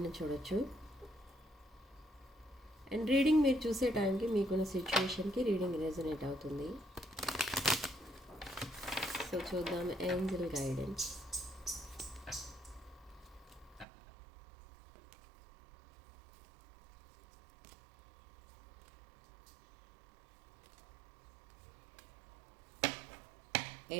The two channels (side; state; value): left; drops out; at 13.9 s